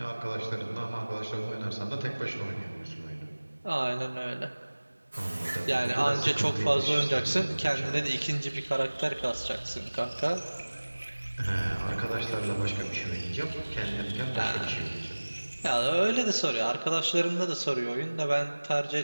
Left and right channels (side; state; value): both; inverted; correlation -1.00